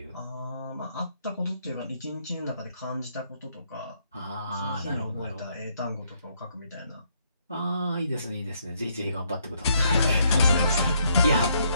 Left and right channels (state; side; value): inverted; both; correlation -0.72